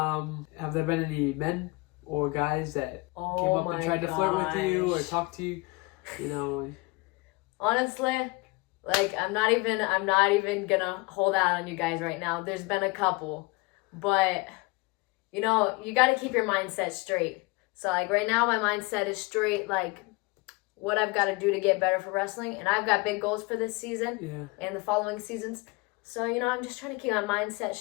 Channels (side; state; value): right; quieter; 25.3 dB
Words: there been any men or guys that came up and tried to flirt with you or talk to you? You know. Honestly, like I'm not even gonna hold out on you guys right now. There's been a couple, but you know, you got to keep your mindset straight. So like right now, my mindset is straight. Like what I've got to do to get better for wrestling, and I've got big goals for this season and the following seasons. So you know, I'm just trying to keep my mindset